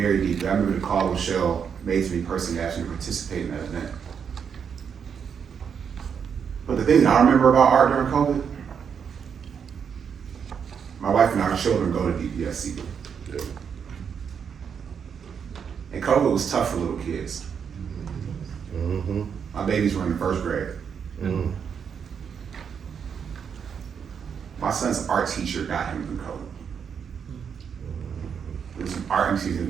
deeply. I remember the call Rochelle made to me personally, asking me to participate in that event. But the thing that I remember about art during COVID, my wife and our children go to DPSC. And COVID was tough for little kids. My babies were in the first grade. My son's art teacher got him through COVID. It was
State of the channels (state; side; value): quieter; left; 7.1 dB